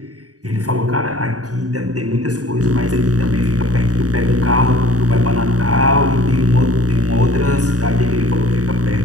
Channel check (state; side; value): late; left; 0.67 ms